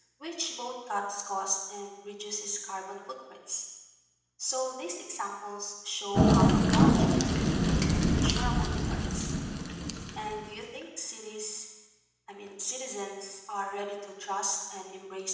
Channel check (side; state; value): both; identical; correlation 1.00